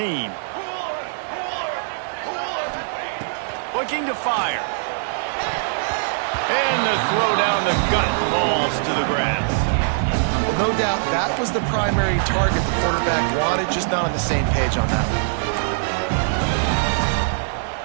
Looking to fire. And the throw down the gut falls to the grass. Well, no doubt that was the primary target the quarterback wanted, just not on the same page on that one.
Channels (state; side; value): silent; left; digital silence